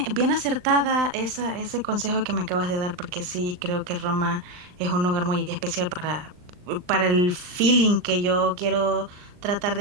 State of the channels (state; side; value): late; left; 39 ms